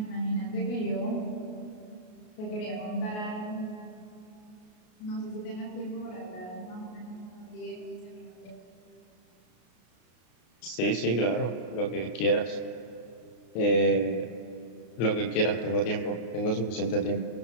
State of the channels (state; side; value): late; right; 33 ms